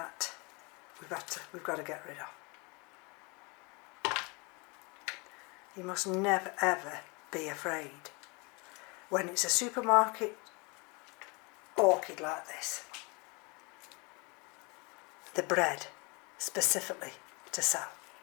we've got to get rid of. You must never ever be afraid when it's a supermarket orchid like this. The bred specifically to sell.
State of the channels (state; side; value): quieter; right; 29.2 dB